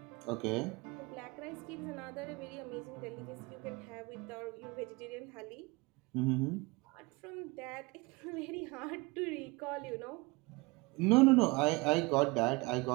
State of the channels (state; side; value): quieter; left; 24.9 dB